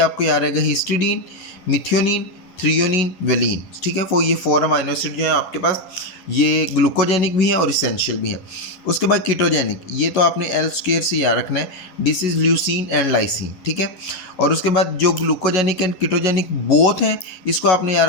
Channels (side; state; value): right; late; 11 ms